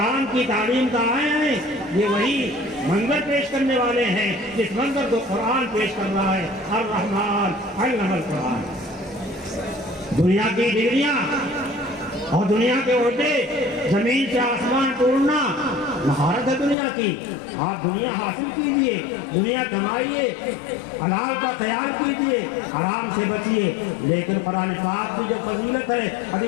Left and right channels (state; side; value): drops out; right; at 16.8 s